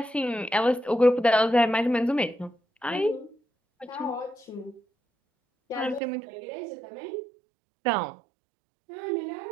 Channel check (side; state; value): left; drops out; at 6.0 s